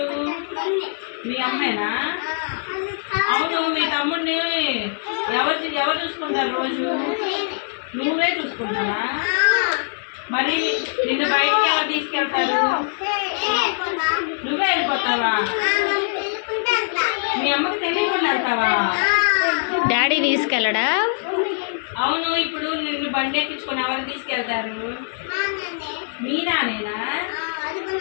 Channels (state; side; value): silent; right; digital silence